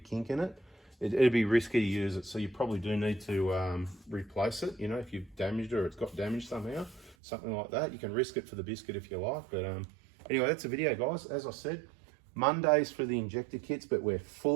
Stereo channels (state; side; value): drops out; left; at 7.2 s